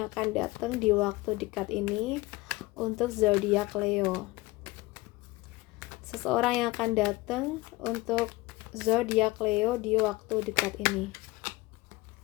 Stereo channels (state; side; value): quieter; right; 21.0 dB